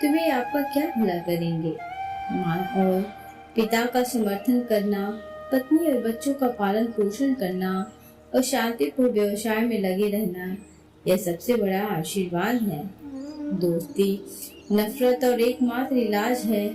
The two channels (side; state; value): both; identical; correlation 1.00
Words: वे आपका क्या भला करेंगे। माँ और पिता का समर्थन करना, पत्नी और बच्चों का पालन पोषण करना और शांतिपूर्ण व्यवसाय में लगे रहना, यह सबसे बड़ा आशीर्वाद है। दोस्ती नफरत और एकमात्र इलाज है,